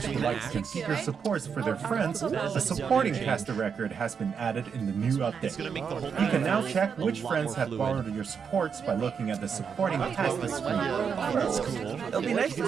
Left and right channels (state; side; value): quieter; left; 6.6 dB